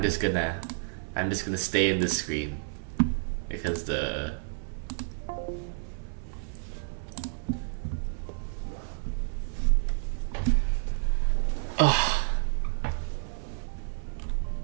just gonna stay in this screen because the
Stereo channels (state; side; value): silent; left; 58 dB below the other